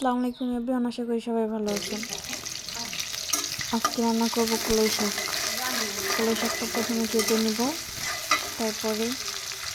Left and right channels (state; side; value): identical; both; correlation 1.00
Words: আলাইকুম everyone. আশা করি সবাই ভালো আছেন। আজকে রান্না করব কলাই শাক। কলাই শাকটা প্রথমে কেটে নিব, তারপরে